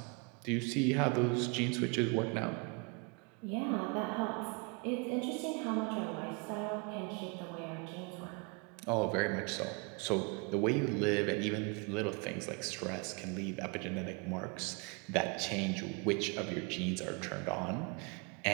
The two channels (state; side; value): quieter; left; 32.2 dB